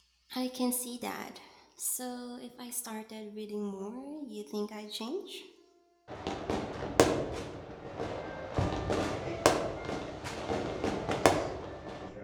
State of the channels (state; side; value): identical; both; correlation 1.00